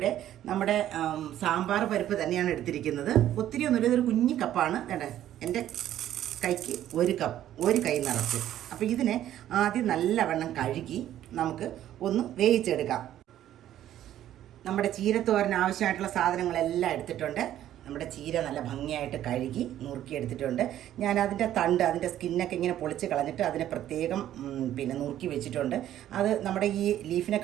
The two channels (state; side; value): quieter; left; 12.1 dB